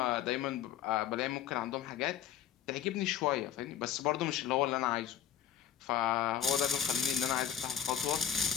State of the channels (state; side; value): quieter; right; 10.2 dB